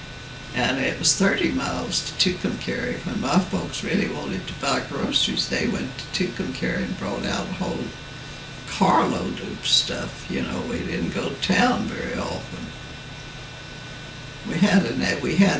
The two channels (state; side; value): identical; both; correlation 1.00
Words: And it was 30 miles to Tucumcari. When my folks really wanted to buy groceries, they went to Tucumcari and brought out a whole carload of stuff. We didn't go to town very often.